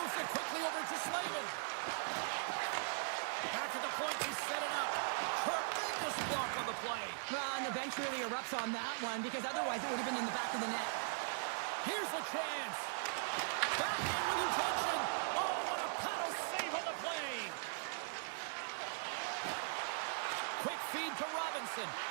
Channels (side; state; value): left; silent; digital silence